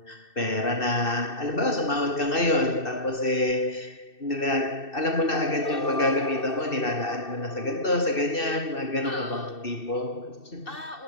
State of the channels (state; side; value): late; right; 2.6 ms